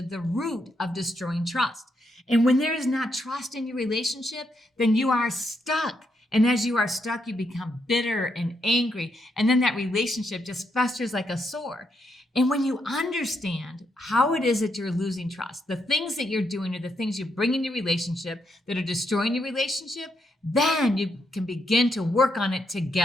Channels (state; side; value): normal; both; correlation 0.79